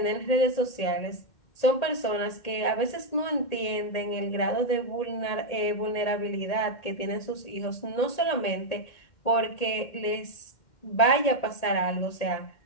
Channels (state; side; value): late; right; 1.8 ms